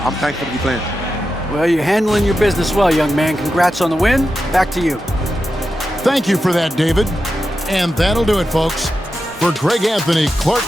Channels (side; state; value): both; normal; correlation 0.90